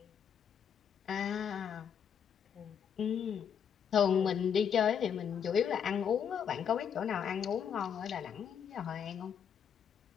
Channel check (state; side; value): quieter; right; 7.8 dB